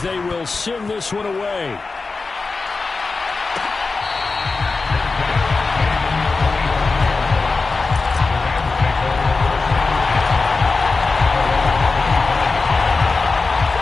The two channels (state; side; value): quieter; right; 4.0 dB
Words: they will send this one away.